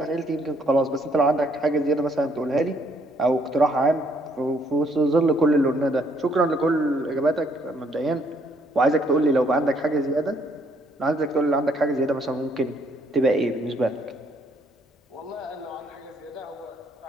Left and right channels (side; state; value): both; normal; correlation 0.68